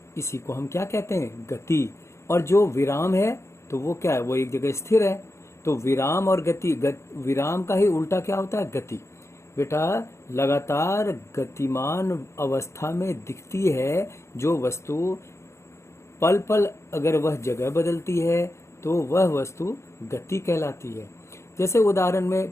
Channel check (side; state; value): right; late; 0.13 ms